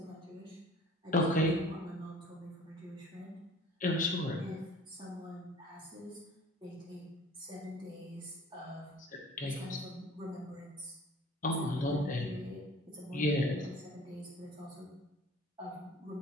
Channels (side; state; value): both; normal; correlation 0.47